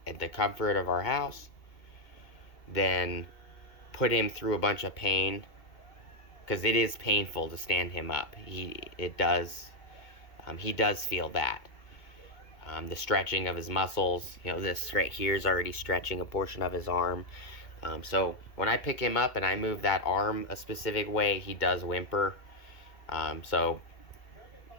at the comfort of our house, than put him through a bunch of pain, because it is painful to stand him up. He does feel that. The stretching of his muscles, this right here is already stretching a portion of his arm. So when I pick him up and I move that arm a specific way, he does whimper. So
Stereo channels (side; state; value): right; late; 2.2 ms